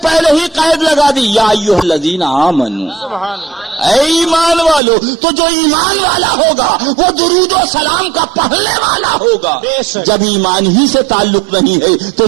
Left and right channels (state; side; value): drops out; left; at 4.8 s